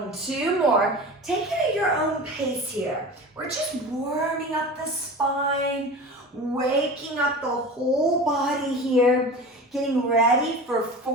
2 more. Take it at your own pace here. We're just warming up the spine, waking up the whole body here. Getting ready for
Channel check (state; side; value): normal; both; correlation 0.33